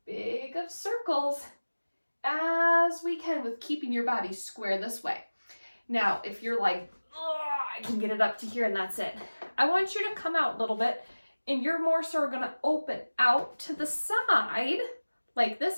big of circles as we can with keeping your body square this way. Now, if you're like, I can get it up to here and that's it, I want you to come out a little bit, and you're more so going to open out to the side like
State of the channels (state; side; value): inverted; both; correlation -1.00